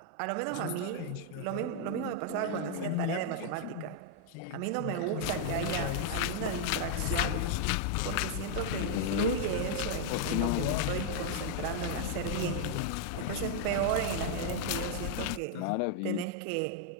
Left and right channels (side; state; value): both; different; correlation -0.01